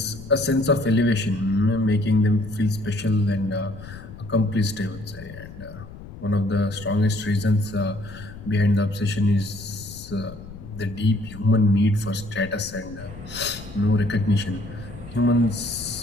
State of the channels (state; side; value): noise; left; rumble, 14 dB below the sound